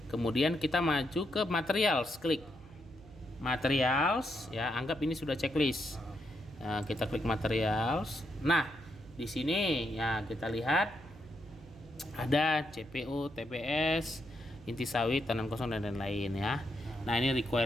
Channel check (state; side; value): noise; right; hum, 20 dB below the sound